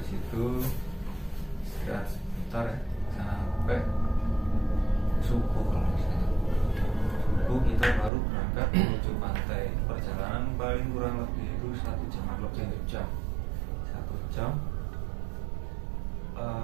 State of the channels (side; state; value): left; drops out; at 8.1 s